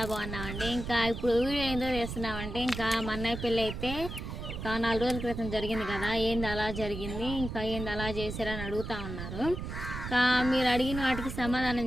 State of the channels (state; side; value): noise; right; rumble, 7 dB below the sound